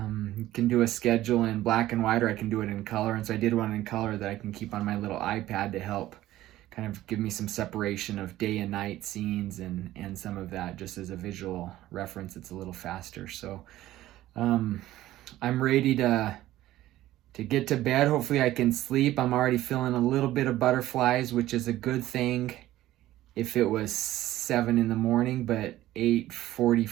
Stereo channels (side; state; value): left; quieter; 14.9 dB